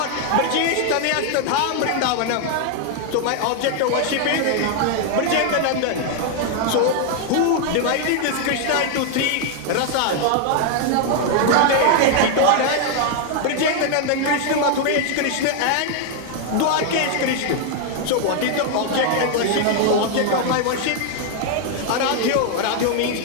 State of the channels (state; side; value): different; both; correlation 0.00